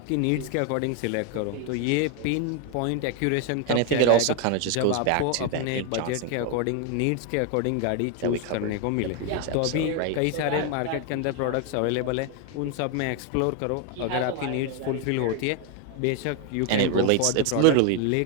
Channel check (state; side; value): different; both; correlation 0.01